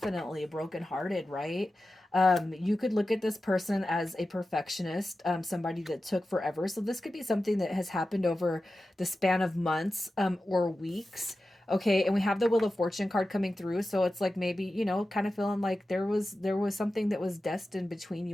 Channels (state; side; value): normal; both; correlation 0.93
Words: brokenhearted, right? You could look at this person as a perfectionist, somebody that took forever. So this could be something that has happened over the span of months, or weeks. Okay, and we have the Wheel of Fortune card coming through, so it's like maybe, kind of feeling like there was something that was destined between